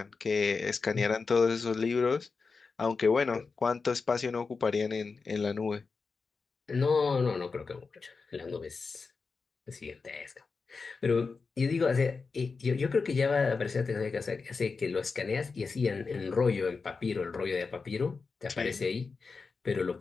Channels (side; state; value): right; quieter; 4.6 dB